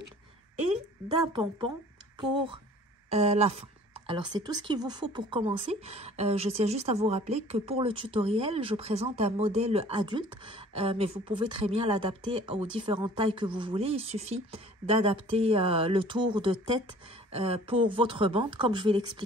et d'un pompon pour la fin. Alors, c'est tout ce qu'il vous faut pour commencer. Je tiens juste à vous rappeler que pour le tutoriel, je présente un modèle adulte, mais vous pouvez très bien l'adapter aux différentes tailles que vous voulez. Il suffit d'adapter le tour de tête pour votre bande, comme je vais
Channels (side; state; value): both; normal; correlation 0.50